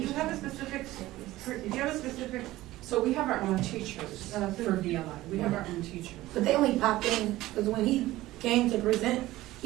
you have a specific, So we have our own teachers for VLI. We have our own teachers. But they only pop in, because when he came to present,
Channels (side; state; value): left; quieter; 16.8 dB